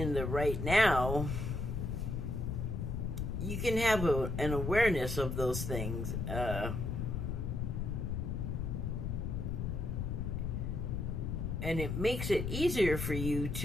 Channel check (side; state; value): left; noise; rumble, 2 dB below the sound